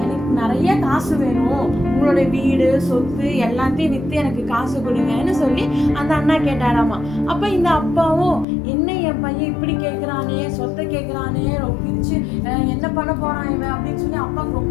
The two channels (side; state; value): right; drops out; at 8.5 s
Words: எனக்கு நிறைய காசு வேணும், உங்களோட வீடு சொத்து எல்லாத்தையும் விற்று எனக்கு காசு கொடுங்கன்னு சொல்லி அந்த அண்ணா கேட்டாராமா. அப்போ இந்த அப்பாவும், என்ன என் பையன் இப்படி கேட்குறானே, சொத்தை கேட்குறானே, பிரிச்சு என்ன பண்ண போறான் இவன் அப்படின்னு சொல்லி அப்பாவுக்கு